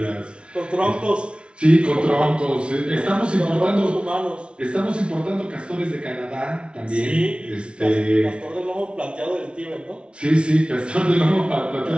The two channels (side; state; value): left; late; 0.058 ms